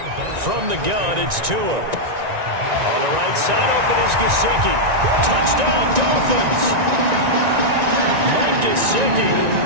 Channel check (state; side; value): late; left; 1.9 ms